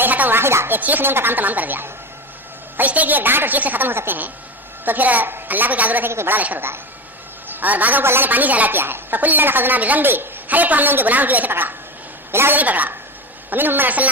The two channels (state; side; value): normal; both; correlation 0.23